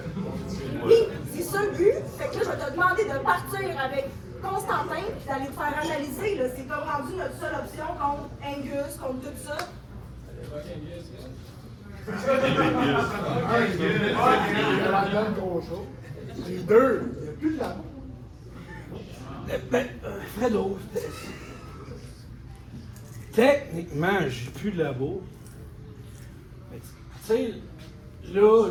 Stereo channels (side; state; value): both; identical; correlation 1.00